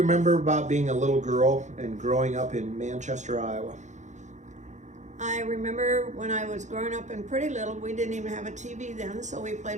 remember about being a little girl and growing up in Manchester, Iowa? I remember when I was growing up and pretty little, we didn't even have a TV then, so we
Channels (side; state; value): left; late; 0.35 ms